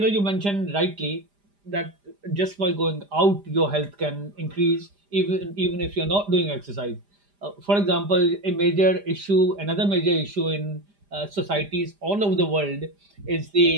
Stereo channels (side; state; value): left; late; 5.0 ms